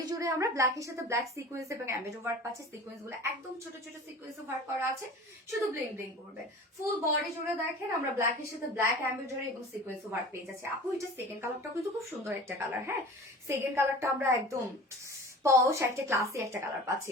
জুড়ে আমরা ব্ল্যাকের সাথে ব্ল্যাক সিকোয়েন্স এবং এমব্রয়ডারি ওয়ার্ক পাচ্ছি। সিকোয়েন্স গুলো একদম ছোট ছোট সিকোয়েন্স ওয়ার্ক করা আছে, শুধু ব্লিং ব্লিং করবে। ফুল বডি জুড়ে দেখেন আমরা ব্ল্যাকের সাথে ব্ল্যাক এমব্রয়ডারি এবং সিকোয়েন্স ওয়ার্ক পেয়ে যাচ্ছি। আপু এটা সেকেন্ড কালারটা কিন্তু খুব সুন্দর একটা কালার। হ্যাঁ, সেকেন্ড কালারটা আমরা একদম পশ একটা ক্লাসি একটা কালার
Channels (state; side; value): normal; both; correlation 0.39